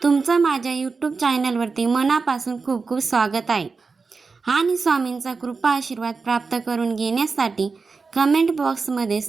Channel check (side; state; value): left; quieter; 4.5 dB